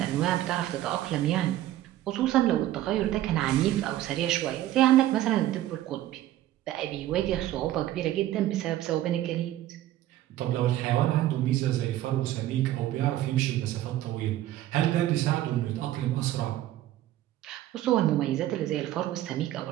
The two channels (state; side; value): quieter; left; 13.9 dB